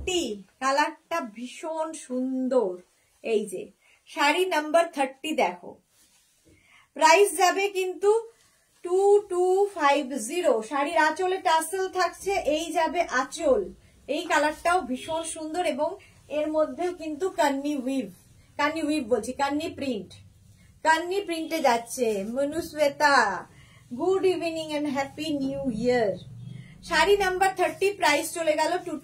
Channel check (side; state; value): both; identical; correlation 1.00